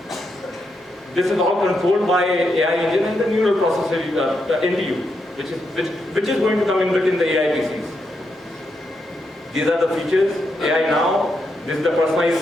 This is all controlled by AI engine and the neural processor NPU, which is going to come inbuilt in the AI PCs. These are the features. AI now. This is the personalized.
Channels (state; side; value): normal; both; correlation 0.82